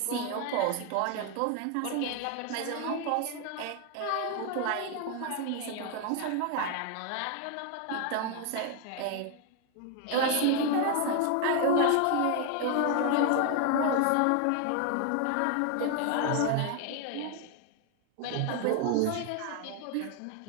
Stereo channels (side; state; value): both; different; correlation 0.00